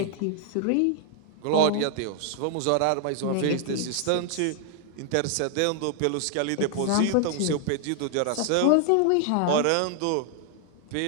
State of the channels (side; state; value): both; different; correlation 0.00